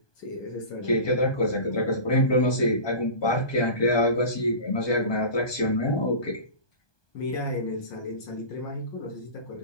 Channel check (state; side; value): late; right; 1.2 ms